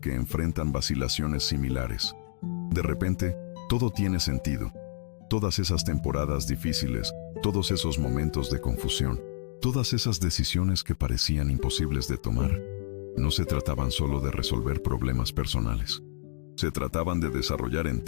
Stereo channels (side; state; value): right; silent; 59 dB below the other